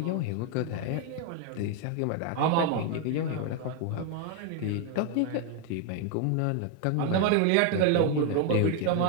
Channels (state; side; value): different; both; correlation 0.01